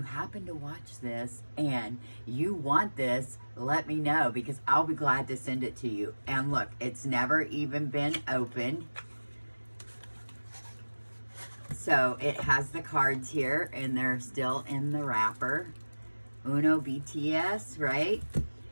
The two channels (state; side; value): inverted; both; correlation -1.00